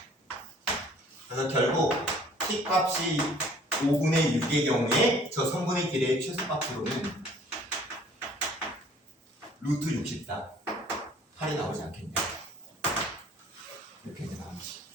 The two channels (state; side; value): normal; both; correlation 0.55